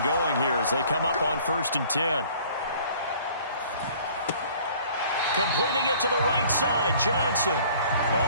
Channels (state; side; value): inverted; both; correlation -0.53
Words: going here as they come up on 1st and 10. Completing it to the right side, Johnson.